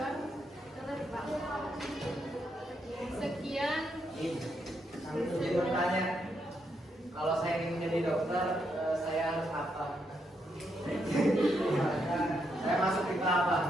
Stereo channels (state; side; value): normal; both; correlation 0.79